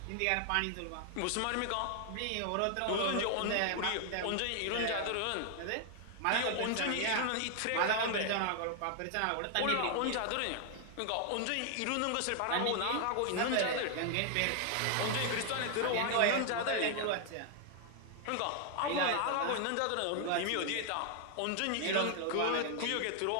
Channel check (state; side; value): different; both; correlation 0.00